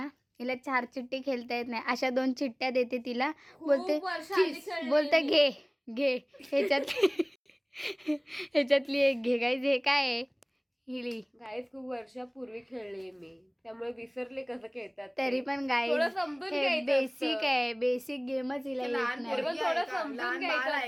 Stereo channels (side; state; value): both; identical; correlation 1.00